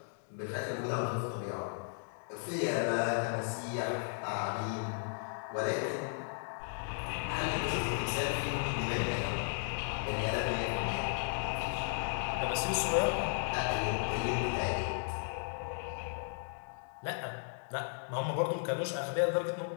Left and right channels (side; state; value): right; silent; digital silence